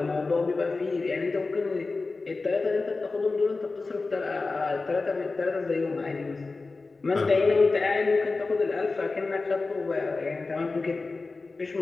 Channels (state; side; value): quieter; right; 3.8 dB